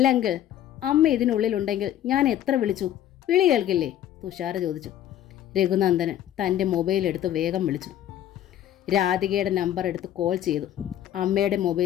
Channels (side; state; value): right; quieter; 11.6 dB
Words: അമ്മ ഇതിനുള്ളിലുണ്ടെങ്കിൽ ഞാൻ എത്ര വിളിച്ചു? വിളി കേൾക്കില്ലേ? തുഷാര ചോദിച്ചു. രഘുനന്ദനൻ തൻ്റെ മൊബൈൽ എടുത്ത് വേഗം വിളിച്ചു. രാധികയുടെ നമ്പർ എടുത്ത് കോൾ ചെയ്തു. അമ്മയുടെ